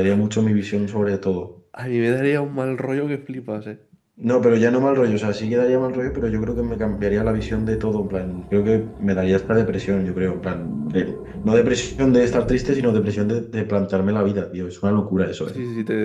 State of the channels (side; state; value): both; identical; correlation 1.00